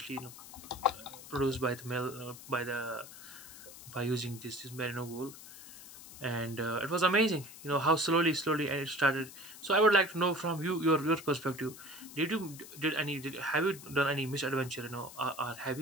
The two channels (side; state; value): left; noise; hiss, 16 dB below the sound